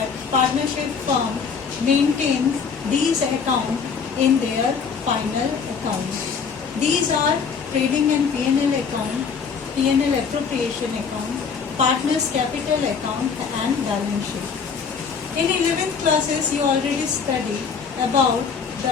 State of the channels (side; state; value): right; quieter; 6.0 dB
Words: partnership firm maintains these accounts in their final accounts. These are trading and P&L account, P&L appropriation account, partners capital account and balance sheet. In 11th classes, you already studied about